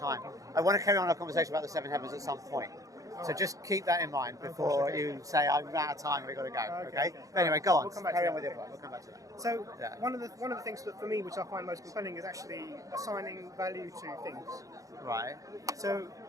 I want to carry on our conversation about the seven heavens at some point. So just keep that in mind before you say I'm out of time. We've got to go. Okay. But anyway, go on. We'll come back Carry to on with that. your point. We'll come back to that. So Yeah. one of the things that for me, which I find most compelling, is actually assigning value to things. Right. So,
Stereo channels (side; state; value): left; late; 0.16 ms